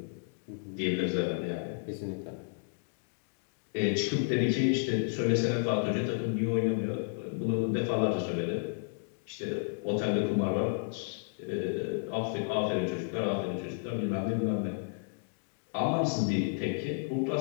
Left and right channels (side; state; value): right; silent; digital silence